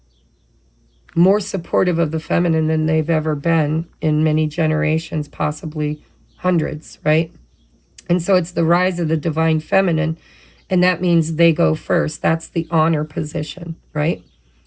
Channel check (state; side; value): identical; both; correlation 1.00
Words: more supportive of the feminine than they've ever been in many generations, possibly hundreds, right? And so it's the rise of the divine feminine, and that means they go first. That's the honor position, right?